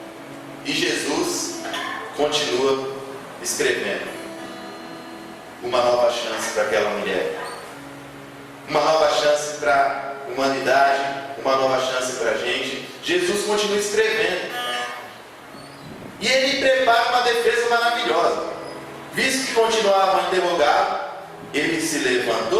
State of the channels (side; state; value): both; identical; correlation 1.00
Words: E Jesus continua escrevendo uma nova chance para aquela mulher, uma nova chance para a humanidade, uma nova chance para a gente. Jesus continua escrevendo. E ele prepara uma defesa maravilhosa. Visto que continuavam a interrogá-lo, ele se